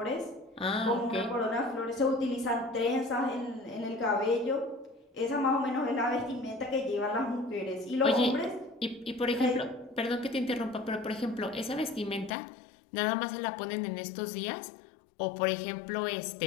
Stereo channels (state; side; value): drops out; right; at 12.4 s